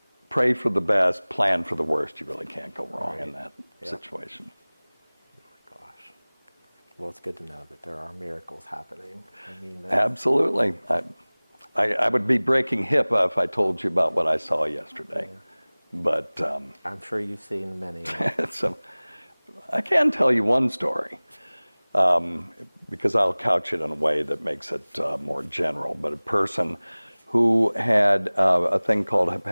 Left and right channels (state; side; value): inverted; both; correlation -1.00